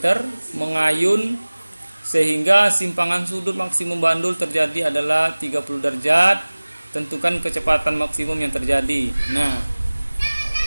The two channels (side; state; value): both; inverted; correlation -1.00